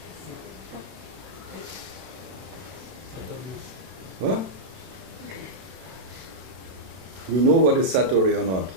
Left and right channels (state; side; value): late; left; 32 ms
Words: What? You know what is Satori or not?